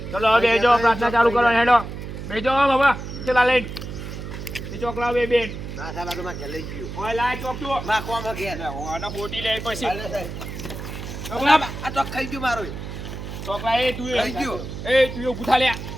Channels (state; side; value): noise; right; hum, 8 dB below the sound